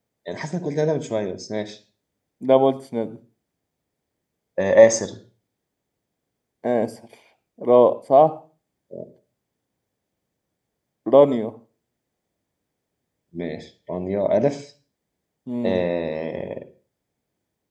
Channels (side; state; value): both; identical; correlation 1.00